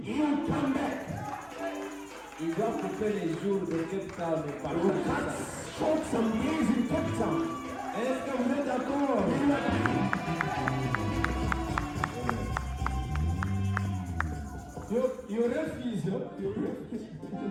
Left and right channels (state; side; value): identical; both; correlation 1.00